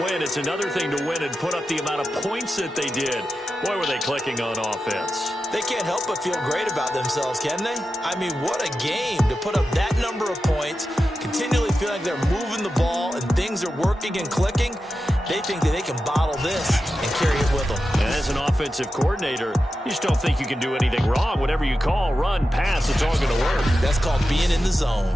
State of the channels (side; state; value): both; normal; correlation 0.91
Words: win. It's another thing to win and put up the amount of points that they did. Boy, were they clicking on offense. They can't help but feel great about themselves, can they? I mean, what a game to put up that number of points, continually feel like they're moving the ball and things are working and clicking. They think that they can bottle this and carry it with them. And as an offensive coordinator, you just don't think you can do anything wrong. Whatever you call, run, pass, it's all going to work. That's called being in the zone.